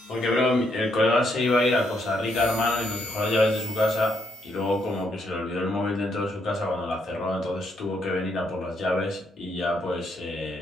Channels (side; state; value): both; normal; correlation 0.75